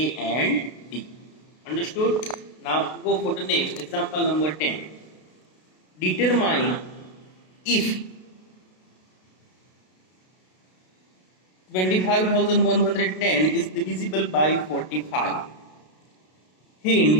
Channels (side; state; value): right; late; 32 ms